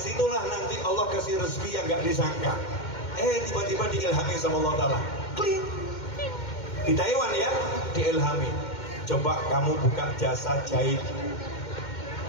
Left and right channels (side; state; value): right; late; 2.1 ms